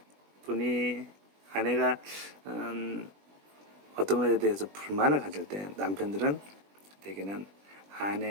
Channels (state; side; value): late; left; 20 ms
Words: 아내가 음, 어떤 것에 대해서 불만을 가질 때 남편들은 대개는